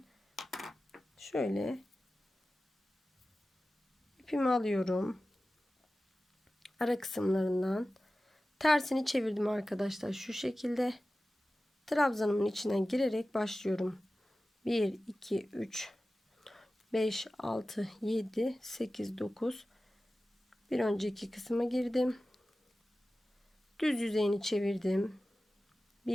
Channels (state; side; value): normal; both; correlation 0.95